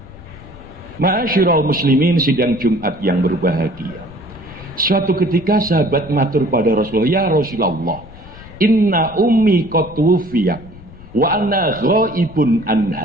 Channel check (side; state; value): left; noise; rumble, 19 dB below the sound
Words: Ma'asyiral muslimin, sidang Jumat yang berbahagia. Suatu ketika sahabat matur pada Rasulullah, ya Rasulullah, inna ummi qad tuwfiyat wa anna ghaibun